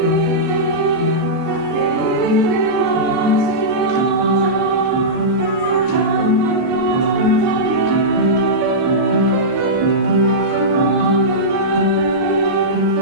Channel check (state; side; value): late; left; 4.9 ms